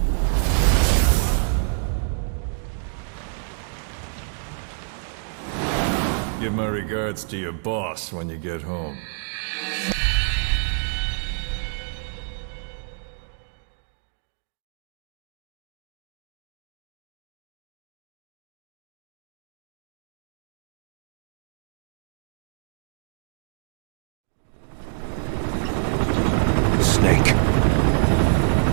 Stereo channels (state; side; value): silent; left; 61 dB below the other